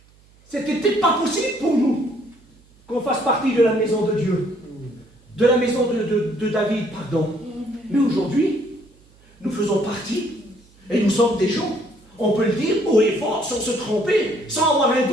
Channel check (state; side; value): noise; right; hum, 29 dB below the sound